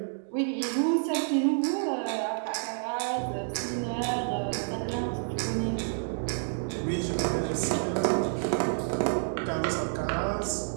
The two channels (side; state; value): left; silent; digital silence